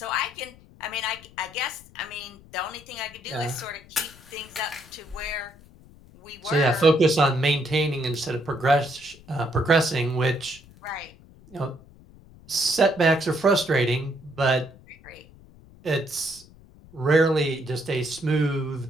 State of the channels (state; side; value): noise; left; rumble, 23 dB below the sound